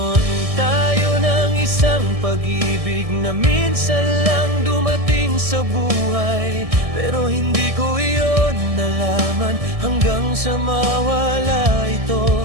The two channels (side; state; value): left; late; 1.6 ms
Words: tayo ng isang pag-ibig na minsan lang dumating sa buhay, pero hindi ko iyon nalaman hanggang sa mawala